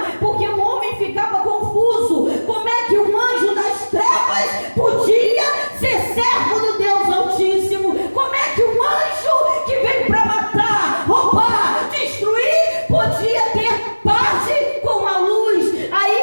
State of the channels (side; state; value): both; inverted; correlation -1.00